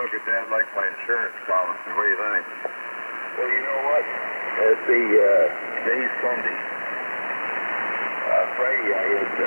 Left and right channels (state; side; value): inverted; both; correlation -1.00